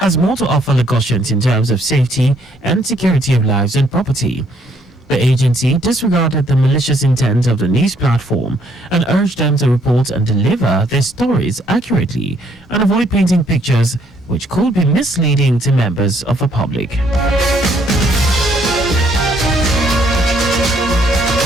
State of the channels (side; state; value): both; normal; correlation 0.67